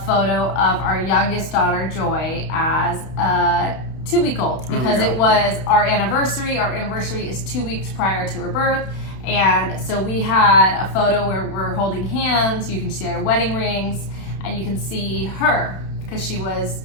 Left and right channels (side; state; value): right; late; 31 ms